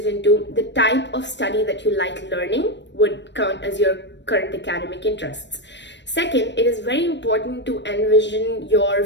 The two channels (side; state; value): right; late; 0.52 ms